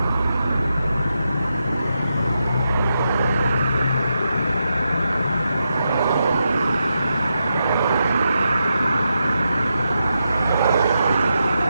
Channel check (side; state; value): both; inverted; correlation -0.86